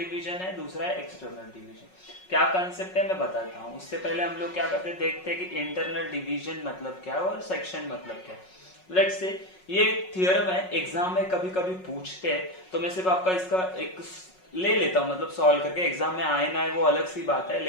है, दूसरा है एक्सटर्नल डिवीजन। क्या कंसेप्ट है मैं बताता हूँ। उससे पहले हम लोग क्या करते हैं, देखते हैं कि इंटरनल डिवीजन मतलब क्या है और सेक्शन मतलब क्या है। लेट्स से ये थियरम है, एग्जाम में कभी कभी पूछते हैं, तो मैं सिर्फ आपका इसका एक ले लेता हूँ, मतलब सॉल्व करके। एग्जाम में आए ना आए वो अलग सी बात है,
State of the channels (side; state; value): right; late; 5.4 ms